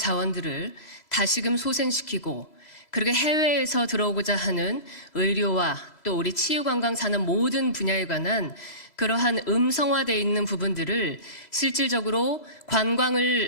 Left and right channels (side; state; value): right; late; 2.0 ms